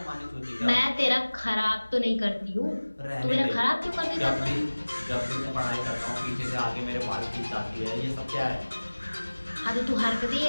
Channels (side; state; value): both; inverted; correlation -1.00